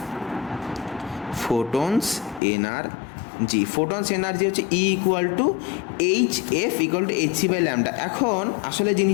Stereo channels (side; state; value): right; drops out; at 2.4 s